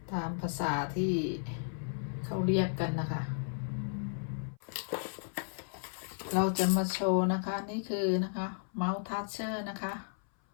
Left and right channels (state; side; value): silent; right; 55 dB below the other